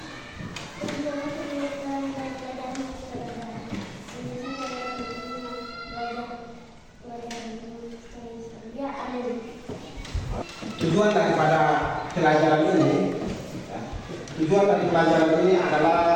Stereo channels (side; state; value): both; identical; correlation 1.00